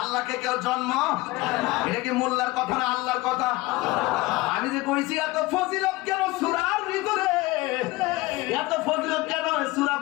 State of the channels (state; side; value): quieter; right; 20.5 dB